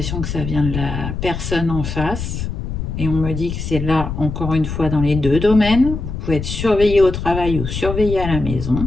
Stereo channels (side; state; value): left; noise; rumble, 5 dB below the sound